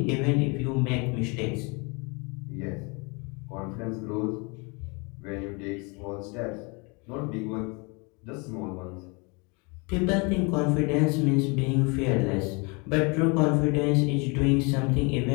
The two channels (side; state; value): right; quieter; 30.2 dB